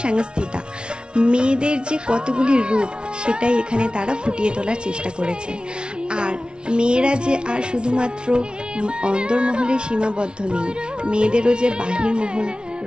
সংস্থিতা। মেয়েদের যে কতগুলি রূপ সেটাই এখানে তারা ফুটিয়ে তোলার চেষ্টা করেছে। আর মেয়েরা যে আর শুধুমাত্র অন্দরমহলে সীমাবদ্ধ নেই, মেয়েদেরও যে বাহিরমহল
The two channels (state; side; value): late; left; 0.056 ms